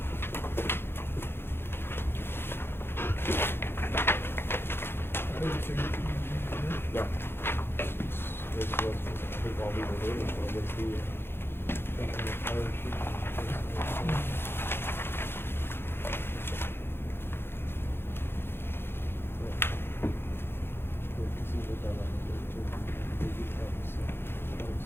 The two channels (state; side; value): late; right; 0.11 ms